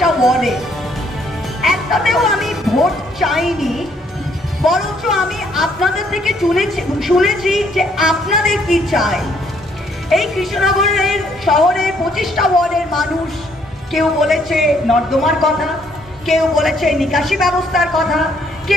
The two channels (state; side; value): normal; both; correlation 0.67